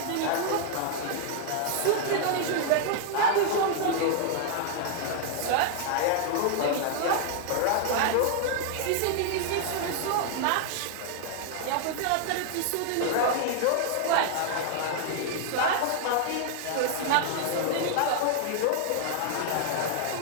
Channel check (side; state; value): both; different; correlation 0.00